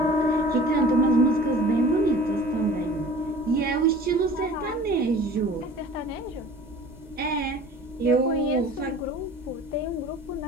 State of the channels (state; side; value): normal; both; correlation 0.44